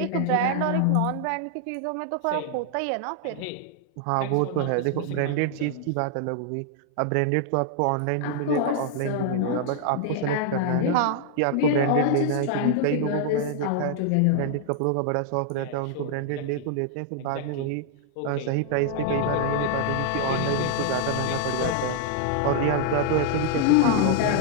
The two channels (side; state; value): both; different; correlation 0.00